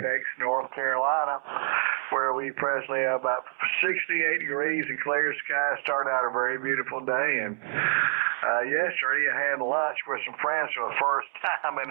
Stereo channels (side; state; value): left; silent; digital silence